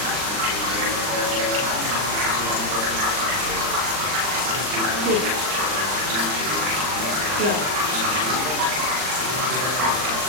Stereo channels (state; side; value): late; left; 39 ms